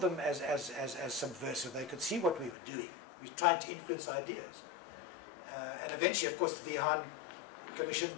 as subversive. They could see what we were doing. We tried to influence ideas. And eventually, of course, the Vihan Commission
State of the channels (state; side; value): drops out; right; at 2.6 s